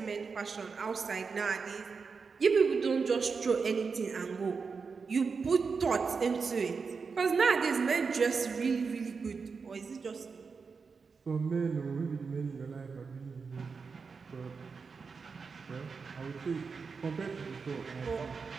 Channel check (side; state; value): left; quieter; 5.1 dB